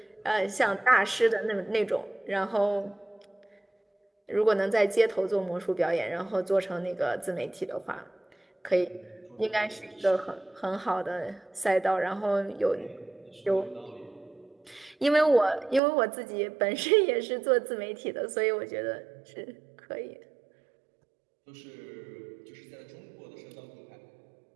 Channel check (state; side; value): drops out; left; at 15.8 s